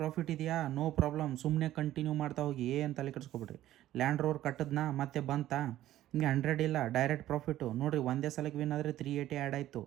ಇದೆಯಾ, ನೋ ಪ್ರಾಬ್ಲಮ್, ಸುಮ್ಮನೆ ಕಂಟಿನ್ಯೂ ಮಾಡ್ತಾ ಹೋಗಿ, ಏನು ತಲೆ ಕೆಡಿಸ್ಕೊಬಿಡ್ರಿ. ಲ್ಯಾಂಡ್ ರೋವರ್ ಕಟ್ಟದ್ನಾ ಮತ್ತೆ ಬಂತಾ, ನಿಮಗೆ 100 ಇಲ್ಲ ಡೈರೆಕ್ಟ್ ಪ್ರಾಫಿಟು. ನೋಡಿರಿ, ಒಂದೇ ಸಲಕ್ಕೆ ವಿನ್ ಆದರೆ 380 ಆ್ಯಡ್ ಆಯಿತು.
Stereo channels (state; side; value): quieter; left; 13.7 dB